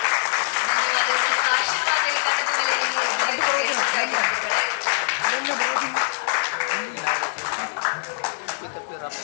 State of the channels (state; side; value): silent; right; digital silence